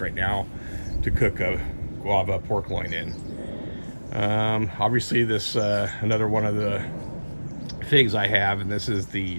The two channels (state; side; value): inverted; both; correlation -1.00